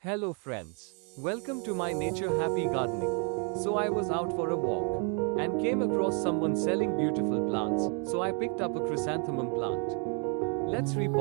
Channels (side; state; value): left; quieter; 37.8 dB